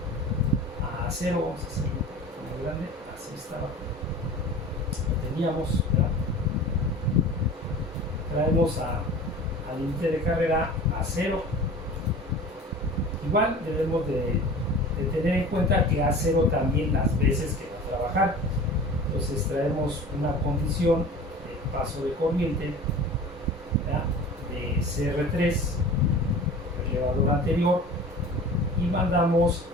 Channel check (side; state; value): both; normal; correlation 0.39